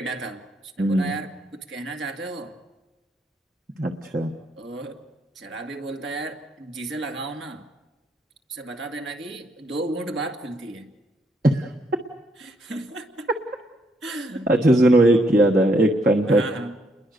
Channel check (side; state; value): both; normal; correlation 0.73